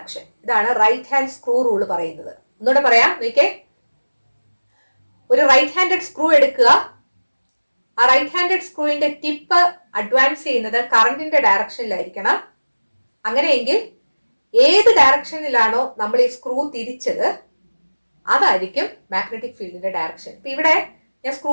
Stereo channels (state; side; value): inverted; both; correlation -1.00